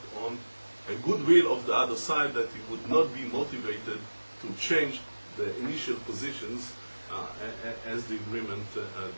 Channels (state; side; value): inverted; both; correlation -1.00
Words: on a goodwill of the other side that you would not be motivated to change the initial positions as the agreement